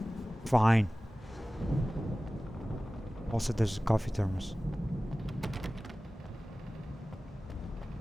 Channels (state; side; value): normal; both; correlation 0.97